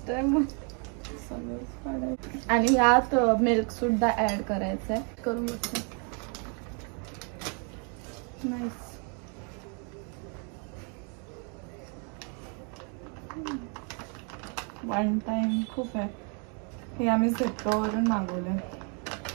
टाइम आणि यात मिल्क सुद्धा ऍड करायचंय. करून बघते. नाईस. वन टाइम खूप आहे. हे आम्ही झेप्टोवरून मागवलं.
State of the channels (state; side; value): quieter; left; 37.9 dB